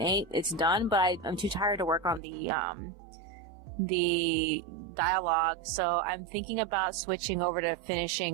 8. It's done, but I'm too tired to work on the dialogue. So I'm thinking about switching over to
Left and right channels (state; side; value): drops out; left; at 2.2 s